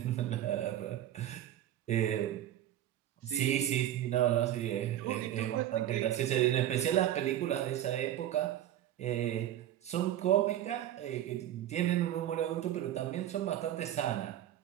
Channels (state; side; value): quieter; left; 12.2 dB